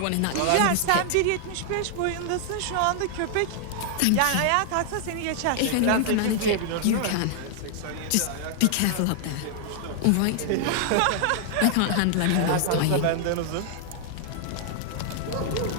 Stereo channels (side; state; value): both; different; correlation -0.01